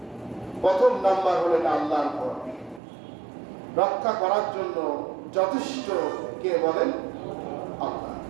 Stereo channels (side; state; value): left; drops out; at 2.8 s